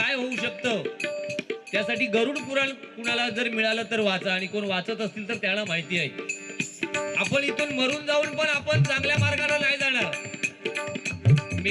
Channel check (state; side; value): identical; both; correlation 1.00